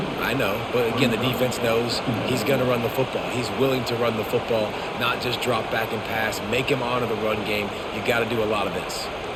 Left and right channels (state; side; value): identical; both; correlation 1.00